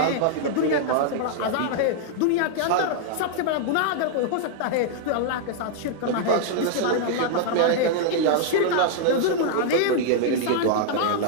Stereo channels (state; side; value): different; both; correlation -0.01